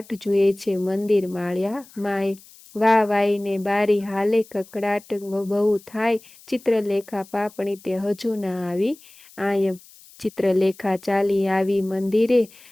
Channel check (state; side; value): noise; left; hiss, 24 dB below the sound